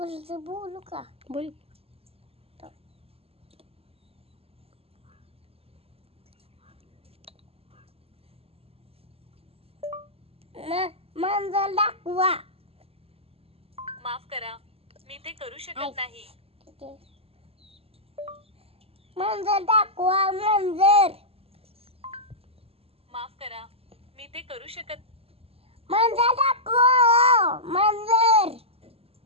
बोलू का? बोल. मांजर दाखवा. माफ करा, मी ते करू शकत नाही. मांजर दाखवा. मांजर. माफ करा, मी ते करू शकत. मांजर दाखवा. मांजर.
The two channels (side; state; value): left; late; 0.28 ms